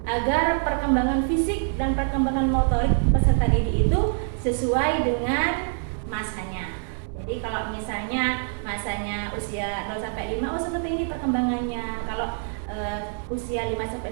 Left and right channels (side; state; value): left; silent; 57 dB below the other